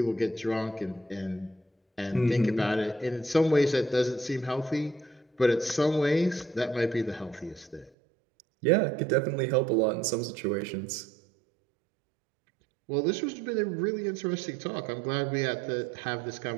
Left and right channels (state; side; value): drops out; left; at 7.9 s